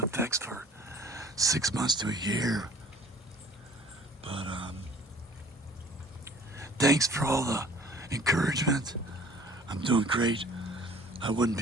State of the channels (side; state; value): both; normal; correlation 0.52